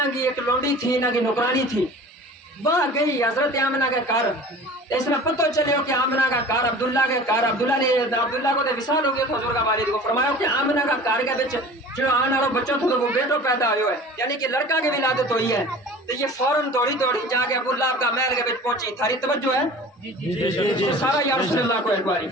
کی ایک لونڈی تھی، انہاں کی نوکرانی تھی، وہاں گئی حضرت آمنہ کے گھر، اس میں پتہ چلے ہو کہ آمنہ کا گھر عبداللہ کے گھر، عبداللہ کو تو وصال ہو گیا تھا حضور کا والد کو، فرمایا کہ آمنہ کا گھر کے بچ جو آنے والا بچہ تھا تو وہ بیٹو پیدا ہوئے ہے، یعنی کہ لڑکا کی ولادت ہوئی ہے، تو یہ فوراً دوڑی جا کے ابو لہب کا محل کے بچ پہنچی۔ تھاری توجہ ہے؟ سارا یا رسول اللہ کو ایک باری،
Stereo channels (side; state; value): both; normal; correlation 0.41